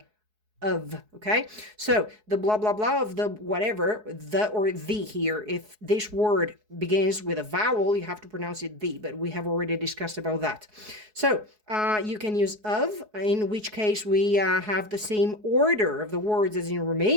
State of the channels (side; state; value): left; late; 4.7 ms